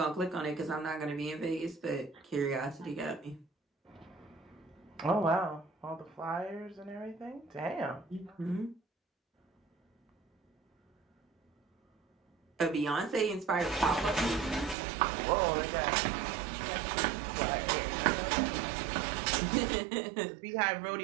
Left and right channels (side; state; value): left; drops out; at 14.8 s